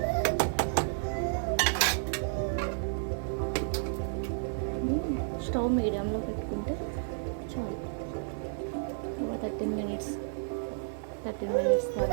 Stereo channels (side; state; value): left; silent; digital silence